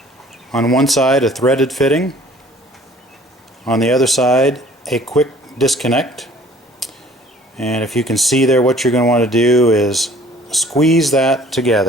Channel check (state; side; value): normal; both; correlation 0.53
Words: On one side a threaded fitting, on the other side a quick disconnect. And if you can see there, what you're going to want to do is squeeze that